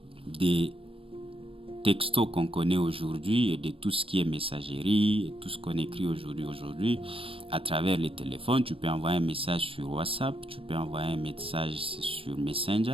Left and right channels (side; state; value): left; late; 0.26 ms